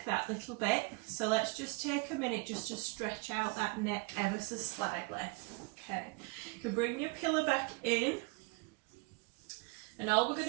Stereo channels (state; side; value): quieter; left; 27.6 dB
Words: that little bit, so let's just take a minute just to stretch out that neck ever so slightly. Okay, you can bring your pillow back in, and all we're